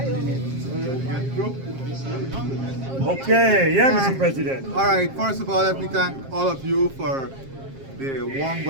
Okay, yeah, Mr. President. All right. First of all, let me thank all of you for the warm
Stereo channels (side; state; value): left; late; 7.5 ms